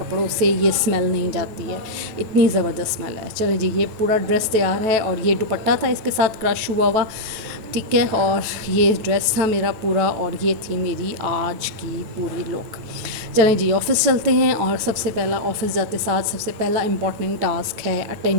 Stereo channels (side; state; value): left; late; 9.6 ms